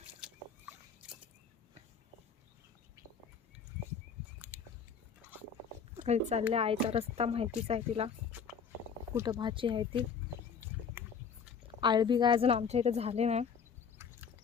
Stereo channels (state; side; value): quieter; right; 6.4 dB